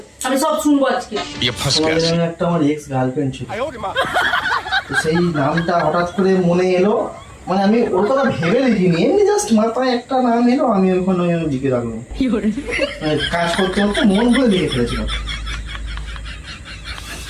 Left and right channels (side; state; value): both; identical; correlation 1.00